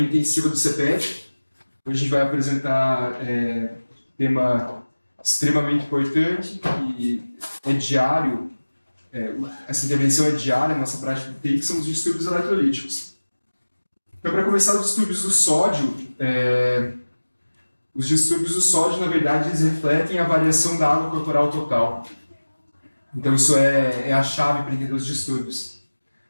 intensiva do CEPET. Hoje a gente vai apresentar um tema extremamente importante, que é diário, essa intervenção é diária na nossa prática de TI, que são os distúrbios eletrolíticos. Então, para começar, os distúrbios do sódio, na verdade, eles refletem a variação da água corporal total. Então, isso é a chave para entender os distúrbios.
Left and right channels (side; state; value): both; inverted; correlation -1.00